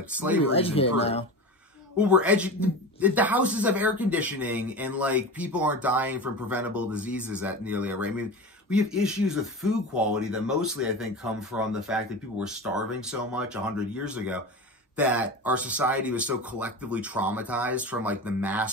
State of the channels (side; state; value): both; normal; correlation 0.28